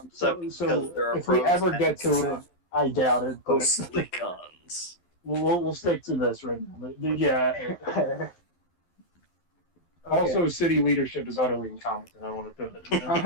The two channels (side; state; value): right; late; 11 ms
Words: So there are if we pros ever and get to it, I doubt it. But mostly cons. we'll stick to this right now. But yeah. Also, city leadership is utterly incompetent. I want to put it.